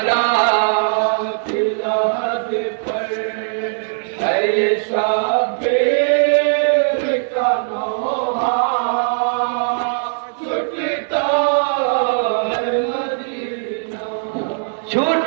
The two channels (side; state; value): left; silent; digital silence